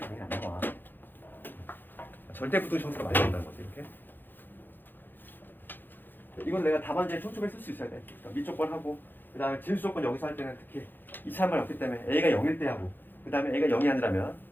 당연히 안 나와. 절대 부등 형태가 많이 나온다는 거지. 이렇게. 이건 내가 답안지에 촘촘히 쓸 수 있어야 돼. 그러니까 밑조건하고 그 다음에 진수 조건 여기서 할 때는 특히 2차란 말이 없기 때문에 A가 0일 때 하고 그 다음에 A가 0이 아니라면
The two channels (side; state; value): right; late; 0.093 ms